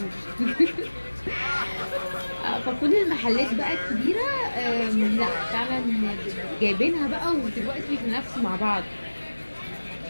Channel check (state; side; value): inverted; both; correlation -1.00